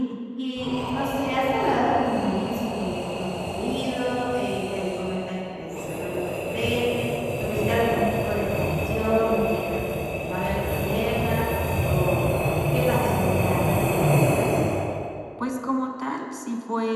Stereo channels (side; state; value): both; identical; correlation 1.00